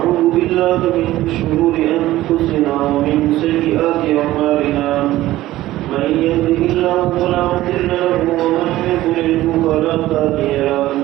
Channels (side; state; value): left; quieter; 15.7 dB